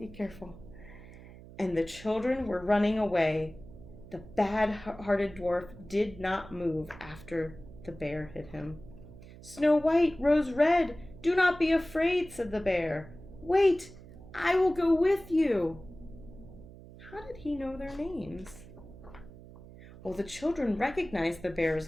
careful. And the children were running away. The bad-hearted dwarf did not move after the bear hit him. "Snow White, Rose Red, do not be afraid," said the bear. "Wait, I will go with you." How did he know their names? Well, the children recognized the bear's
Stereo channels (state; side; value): noise; right; hum, 18 dB below the sound